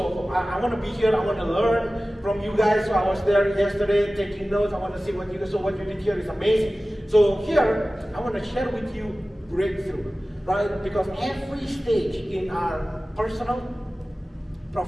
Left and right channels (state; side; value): normal; both; correlation 0.96